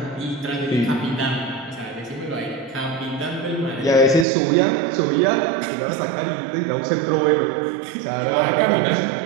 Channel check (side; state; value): left; drops out; at 4.2 s